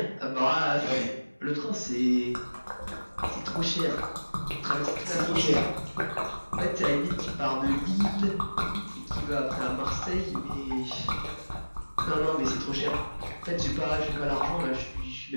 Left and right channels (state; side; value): inverted; both; correlation -1.00